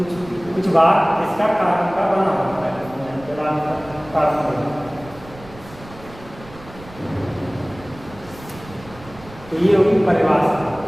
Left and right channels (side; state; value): right; noise; rumble, 19 dB below the sound